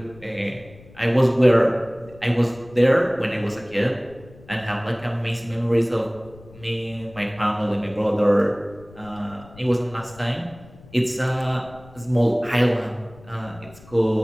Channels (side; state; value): left; noise; rumble, 22 dB below the sound